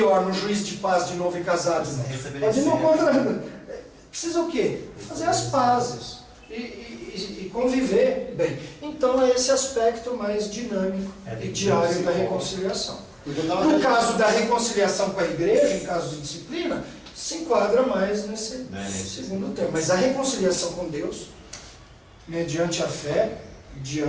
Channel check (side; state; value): both; identical; correlation 1.00